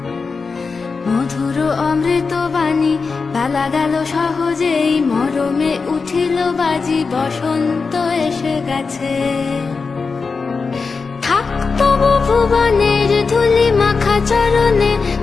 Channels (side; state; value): right; quieter; 4.7 dB